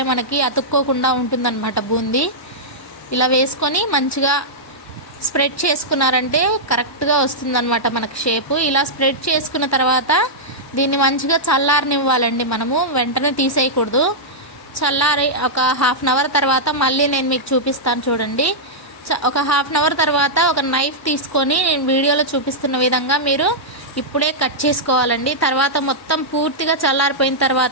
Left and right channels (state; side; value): normal; both; correlation -0.10